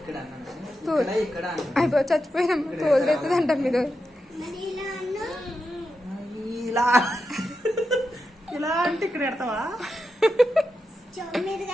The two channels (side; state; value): both; normal; correlation 0.88